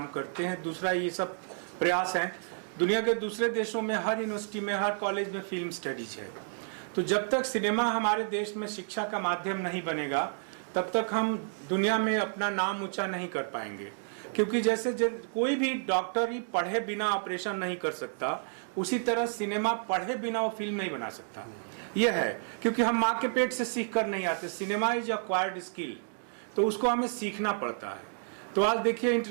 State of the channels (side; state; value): left; silent; digital silence